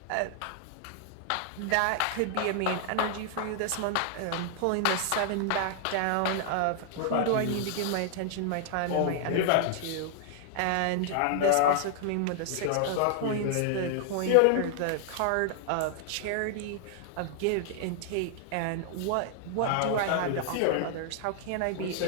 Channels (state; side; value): different; both; correlation 0.00